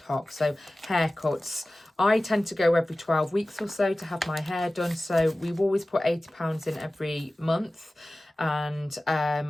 hoc. So haircuts, I tend to go every 12 weeks or so to have my hair done. So we've always put £80 in every month. And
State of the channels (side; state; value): both; normal; correlation 0.97